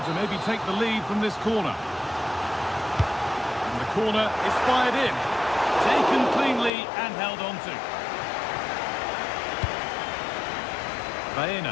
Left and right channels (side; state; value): right; drops out; at 6.7 s